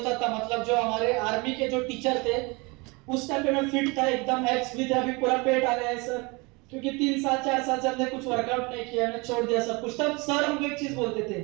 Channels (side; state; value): left; quieter; 27.2 dB